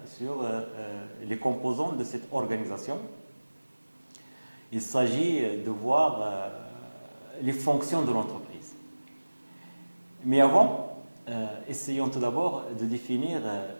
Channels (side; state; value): both; inverted; correlation -1.00